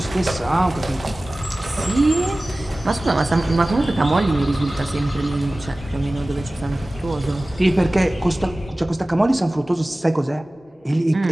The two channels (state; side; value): normal; both; correlation 0.98